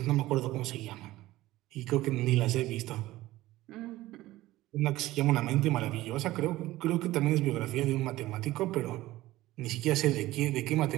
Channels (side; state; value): left; quieter; 16.9 dB